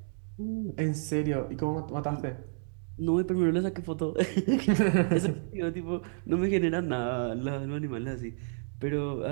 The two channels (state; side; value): silent; left; digital silence